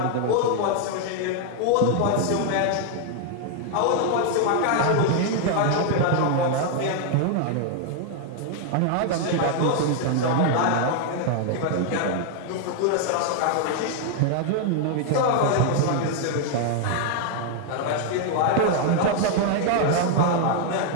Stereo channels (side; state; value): both; different; correlation 0.00